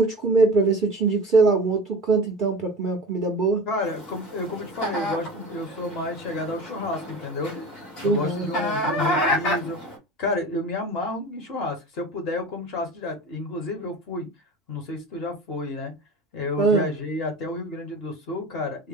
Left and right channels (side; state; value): both; normal; correlation 0.34